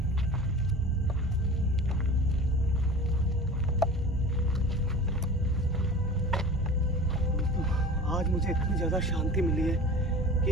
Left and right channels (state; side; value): normal; both; correlation 0.37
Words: आज मुझे इतनी ज़्यादा शांति मिली है